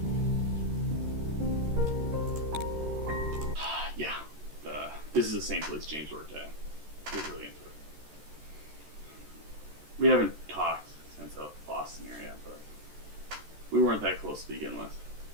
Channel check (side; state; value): left; late; 13 ms